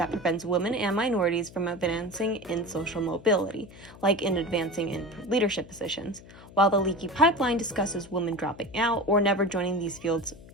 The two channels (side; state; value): left; noise; hum, 20 dB below the sound